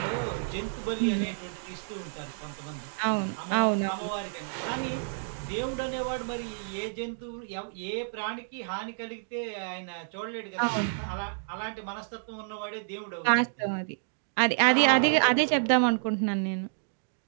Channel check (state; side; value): silent; left; digital silence